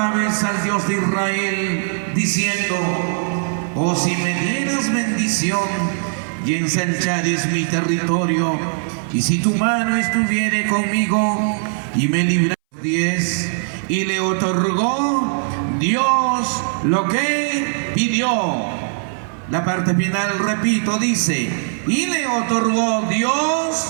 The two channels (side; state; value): left; silent; 63 dB below the other